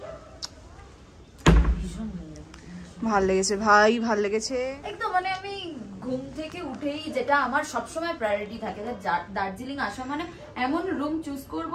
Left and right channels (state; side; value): identical; both; correlation 1.00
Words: ভাল লেগেছে ভাই, ভাল লেগেছে একদম। মানে আমি ঘুম থেকে উঠেই, যেটা আমার সবসময় প্রায়োরিটি থাকে, যে দার্জিলিং আসা মানে এমন রুম চুজ করব